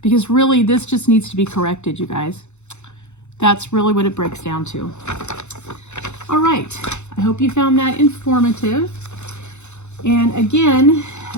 Because really, this just needs to be corrected, you guys. That's really what it breaks down to. All right. I hope you found that informative. And again,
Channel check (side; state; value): right; late; 0.83 ms